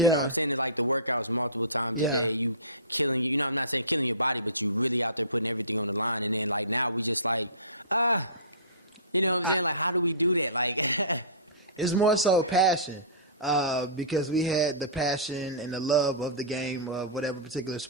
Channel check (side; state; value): both; inverted; correlation -0.31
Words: what I'm saying, to the workouts multiple times a day. You killing I'm not saying killing your body, but you really out there putting everything on the line. And then now we just you know what I'm saying? How do we do that? It's more so passion. Because we had the passion and the love of the game of whatever particular